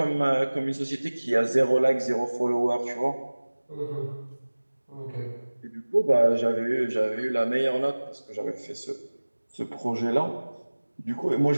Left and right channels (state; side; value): inverted; both; correlation -1.00